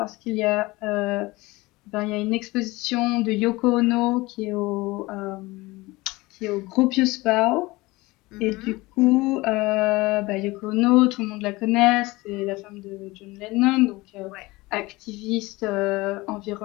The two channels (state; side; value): quieter; right; 21.5 dB